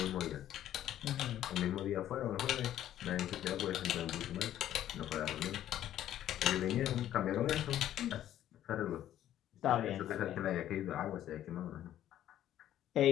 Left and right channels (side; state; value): right; quieter; 12.0 dB